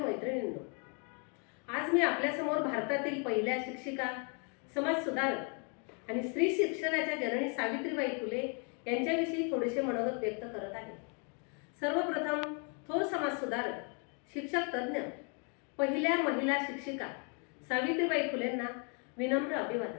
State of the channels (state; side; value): quieter; right; 37.9 dB